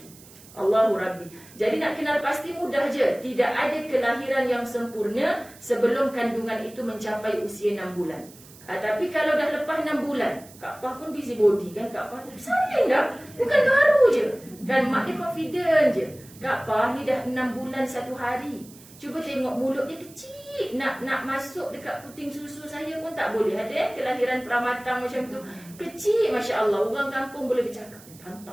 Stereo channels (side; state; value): right; noise; hiss, 22 dB below the sound